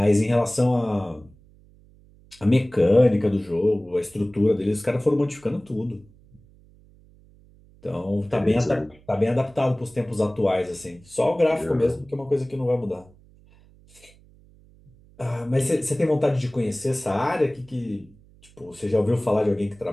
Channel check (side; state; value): right; noise; hum, 27 dB below the sound